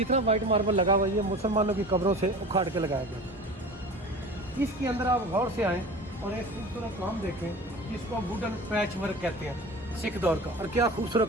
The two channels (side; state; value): both; normal; correlation 0.37